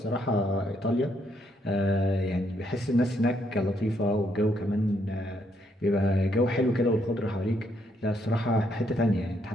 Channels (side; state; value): both; normal; correlation 0.73